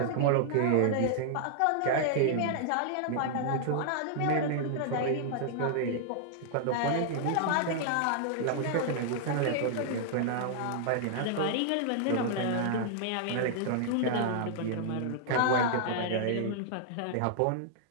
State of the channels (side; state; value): both; different; correlation -0.01